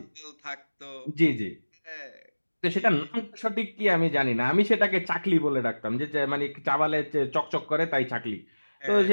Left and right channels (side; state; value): both; inverted; correlation -1.00